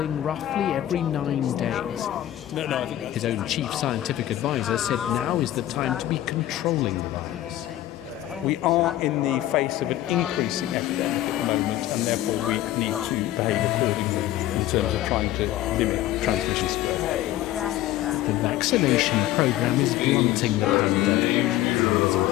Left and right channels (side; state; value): right; quieter; 13.9 dB